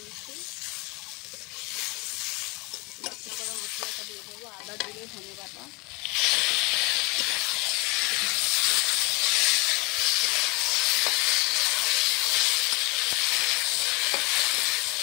বাটা করা মশলাটা দিয়ে দেবো, আদা, জিরে, ধনে বাটা,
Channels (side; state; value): right; quieter; 27.1 dB